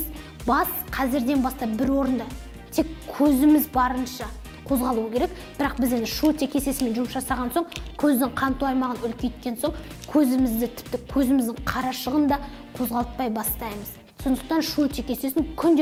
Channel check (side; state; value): both; identical; correlation 1.00